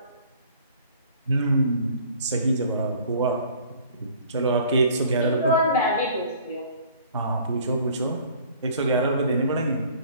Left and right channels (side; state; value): both; inverted; correlation -0.52